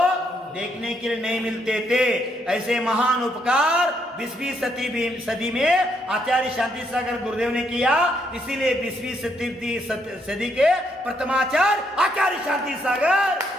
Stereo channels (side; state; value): both; normal; correlation 0.74